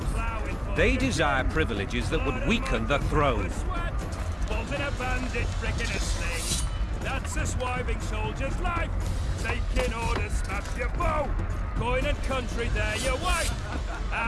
they desire privileges that would weaken the throne. In a bandit brick in a sling. That's a swiving soldier's life. Taking orders, smash your bow. Coin and country, there your wife.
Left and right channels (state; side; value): identical; both; correlation 1.00